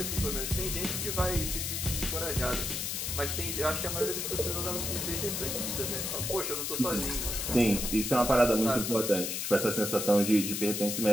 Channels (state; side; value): noise; left; hiss, 2 dB below the sound